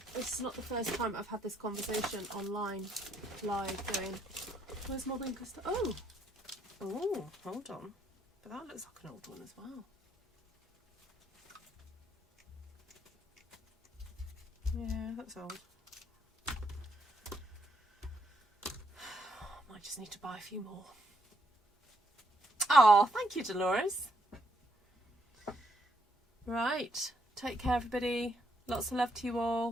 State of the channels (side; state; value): both; normal; correlation 0.74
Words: this is not the first time I've had this conversation online, live, going, where's my Winkler stamp? Oh, hold on. But that looks like an old one as well. Yeah, that's old. Might just need to buy a few more. Oh, thank you, Dolores. Right, take care everybody, lots of love to you